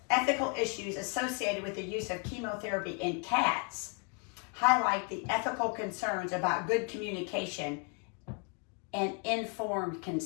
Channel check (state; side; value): quieter; right; 36.9 dB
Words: ethical issues associated with the use of chemotherapy in cats highlight the ethical concerns about good communication and informed